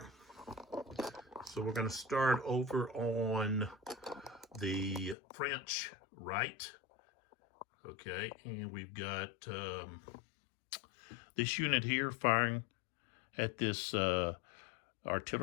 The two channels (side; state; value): right; drops out; at 5.2 s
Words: So we're going to start over on the French right. Okay, and we've got this unit here firing at this